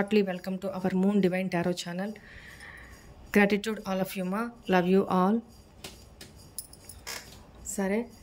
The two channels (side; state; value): both; identical; correlation 1.00